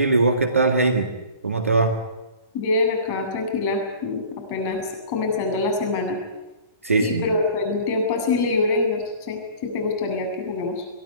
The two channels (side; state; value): both; inverted; correlation -0.44